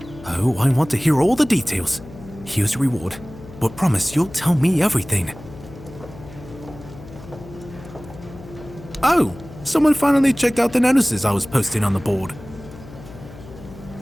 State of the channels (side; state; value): left; noise; hum, 17 dB below the sound